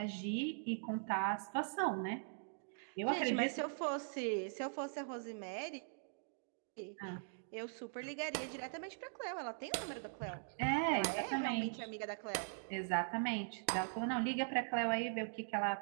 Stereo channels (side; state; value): left; silent; digital silence